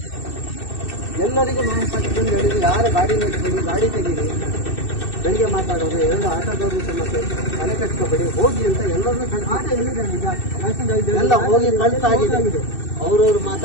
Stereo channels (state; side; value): late; right; 2.6 ms